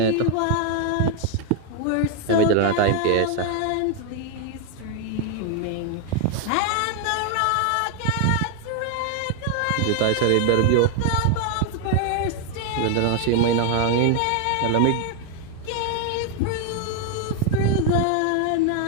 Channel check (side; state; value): both; different; correlation 0.01